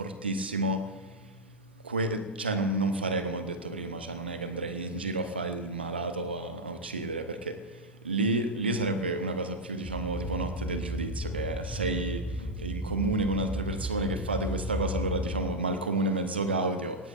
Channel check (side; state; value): both; normal; correlation -0.03